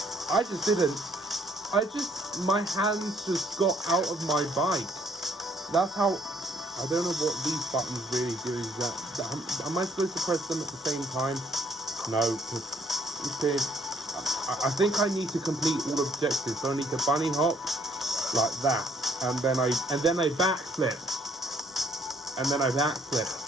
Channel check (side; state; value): both; normal; correlation 0.65